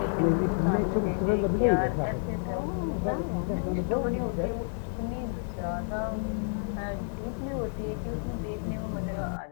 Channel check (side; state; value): right; silent; 58 dB below the other